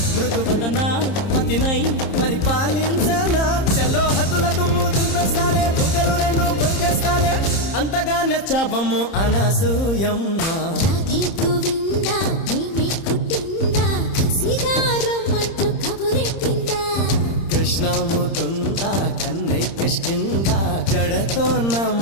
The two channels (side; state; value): right; late; 30 ms